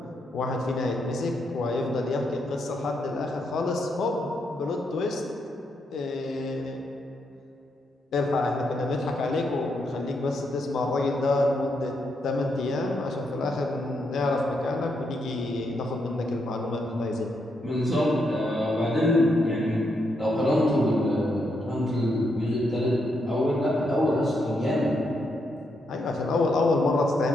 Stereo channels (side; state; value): both; normal; correlation 0.80